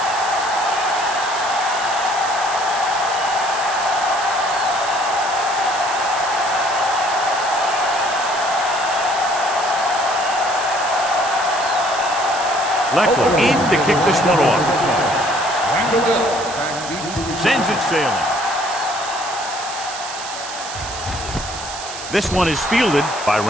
Leckler in to kick this one off. Sends it sailing. This one is fielded by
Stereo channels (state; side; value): noise; right; hiss, 10 dB below the sound